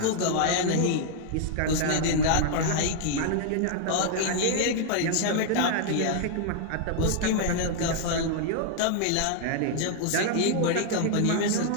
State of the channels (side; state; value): both; different; correlation 0.00